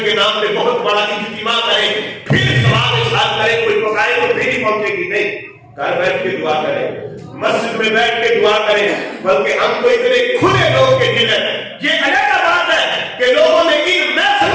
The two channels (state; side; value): identical; both; correlation 1.00